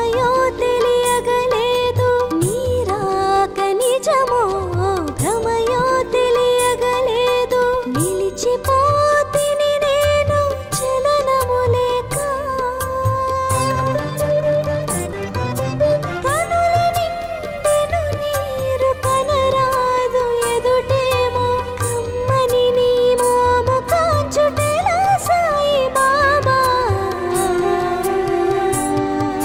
తెలియగలేదు, నీరాక నిజమో భ్రమయో తెలియగలేదు. నిలిచిపోతిని నేను చలనము లేక, కనుల నిండెను నీరు కనరాదు ఎదుటేమో, కమ్మని నీ మోము కాంచుటెలా సాయి బాబా.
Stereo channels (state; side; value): identical; both; correlation 1.00